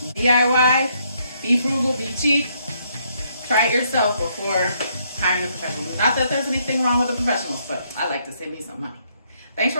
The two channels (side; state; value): both; inverted; correlation -0.72